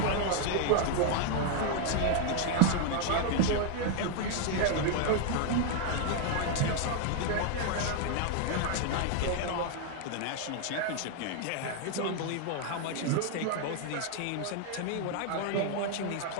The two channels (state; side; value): different; both; correlation 0.00